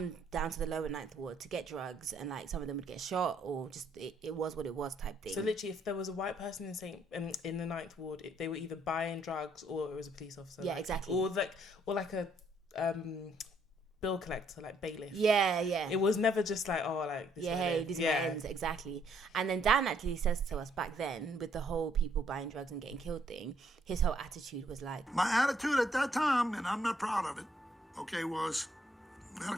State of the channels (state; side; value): normal; both; correlation 0.69